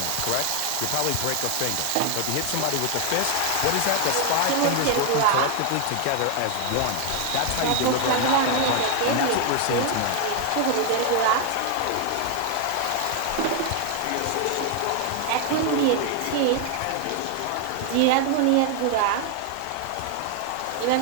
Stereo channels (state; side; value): different; both; correlation 0.00